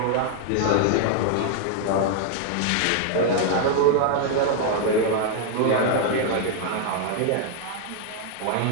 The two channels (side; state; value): both; different; correlation 0.00